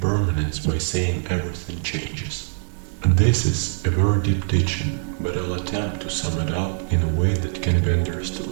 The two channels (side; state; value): left; silent; digital silence